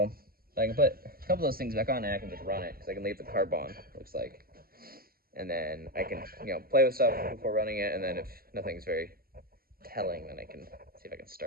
but I can put a couple of those things back on and I can just run it, because I can leave the carb on, looks like. And then I can, play with stuff before running it, and then if nothing's very telling, then I can see if I can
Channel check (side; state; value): left; late; 0.43 ms